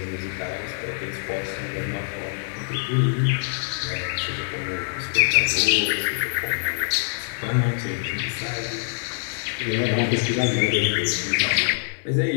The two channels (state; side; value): silent; right; digital silence